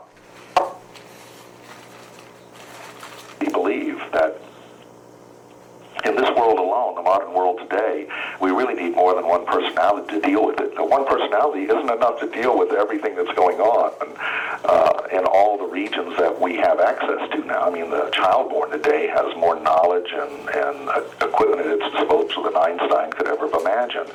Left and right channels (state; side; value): identical; both; correlation 1.00